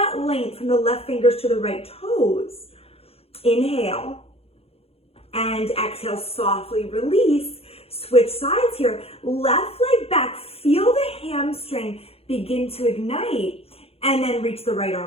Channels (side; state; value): right; late; 0.29 ms